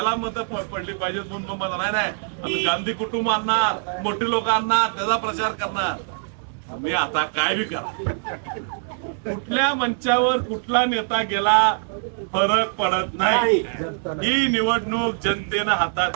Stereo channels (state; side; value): silent; left; digital silence